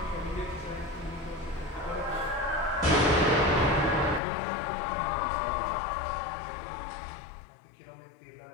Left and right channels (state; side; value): drops out; right; at 4.2 s